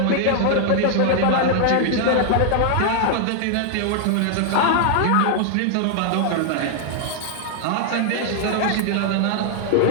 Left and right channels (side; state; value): both; different; correlation 0.00